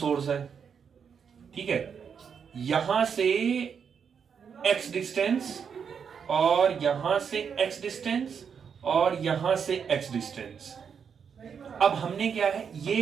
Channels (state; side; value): quieter; left; 6.9 dB